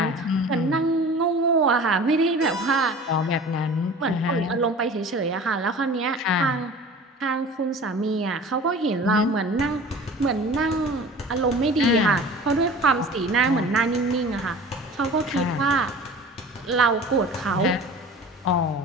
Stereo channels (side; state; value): both; normal; correlation 0.41